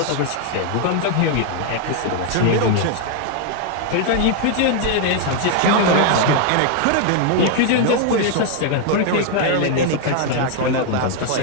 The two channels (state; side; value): different; both; correlation 0.00